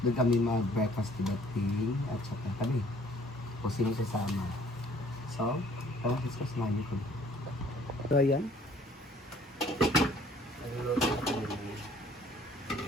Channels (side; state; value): both; normal; correlation 0.57